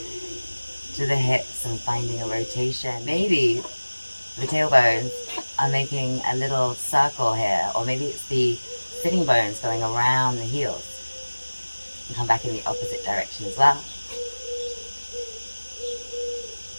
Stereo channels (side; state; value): both; inverted; correlation -1.00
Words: to the hips, and finding a rotation. Maybe the tailbones are making a little circle here, or maybe it's the sitting bones going around the heels. And come back in the opposite direction as well.